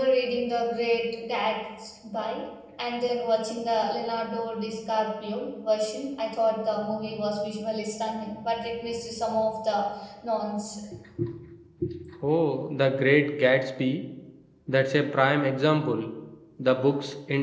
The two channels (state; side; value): identical; both; correlation 1.00